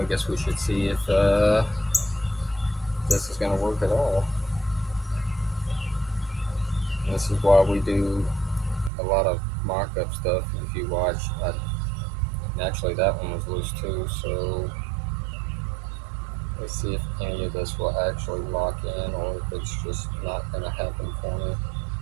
I guess we should see if this is going to work at all. And this is why we do a lot of mock-up stuff. If you watch, actually that one was loose too, so let's see if any of this will actually lock in or if it's just not going to happen for me.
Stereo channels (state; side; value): drops out; left; at 8.9 s